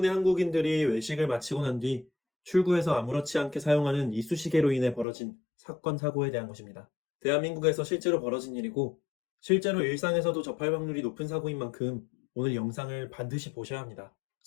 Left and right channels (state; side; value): drops out; right; at 5.1 s